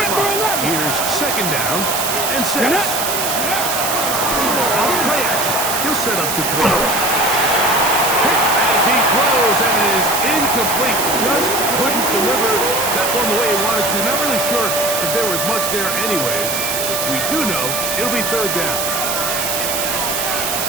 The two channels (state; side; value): noise; right; hiss, 1 dB below the sound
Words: line, here's second down and 6. Off play action. He'll set up to throw. As he throws, and it is incomplete. Just couldn't deliver that one the way he wanted to. Not really sure if there was much there anyways. We do know it'll be third down.